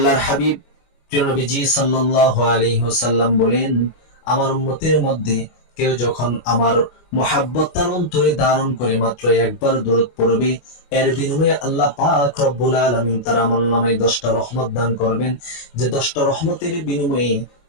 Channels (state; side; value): late; right; 25 ms